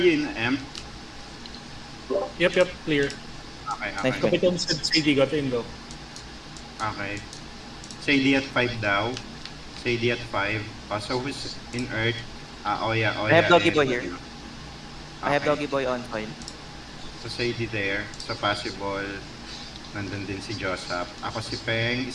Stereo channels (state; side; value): identical; both; correlation 1.00